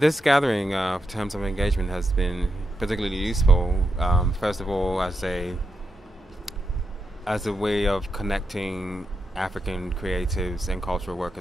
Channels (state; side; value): normal; both; correlation 0.85